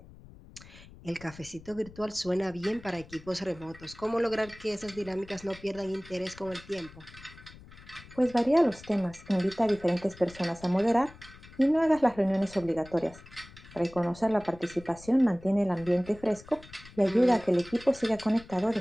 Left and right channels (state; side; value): noise; left; rumble, 20 dB below the sound